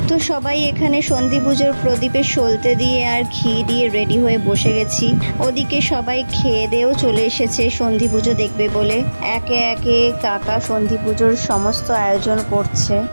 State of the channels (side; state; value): both; inverted; correlation -1.00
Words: তো সবাই এখানে সন্ধি পুজোর প্রদীপে সলতে দিয়ে আর ঘি দিয়ে রেডি হয়ে বসে গেছি। ওদিকে সবাই খেয়ে দেয়েও চলে এসেছে সন্ধি পুজো দেখবে বলে। একে একে কাকা সন্ধি পুজোর সমস্ত আয়োজন করছে।